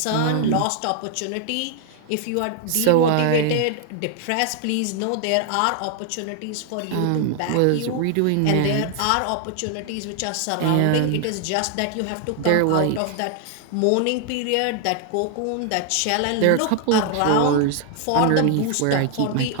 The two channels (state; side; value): different; both; correlation 0.00